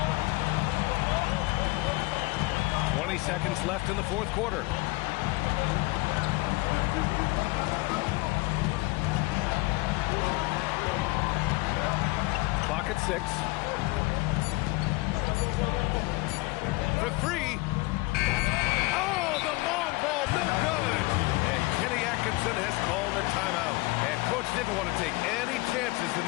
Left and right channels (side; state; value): right; quieter; 23.3 dB